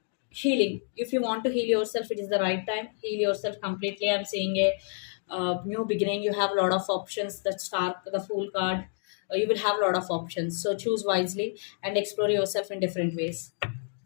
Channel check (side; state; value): right; silent; 59 dB below the other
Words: healing. If you want to heal yourself, it is the right time. Heal yourself completely. I'm seeing a new beginning. You have a lot of options. The star, the Fool card, you will have a lot of options. So choose wisely and explore yourself in different ways.